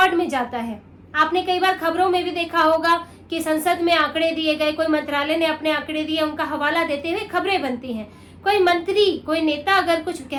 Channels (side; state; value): both; identical; correlation 1.00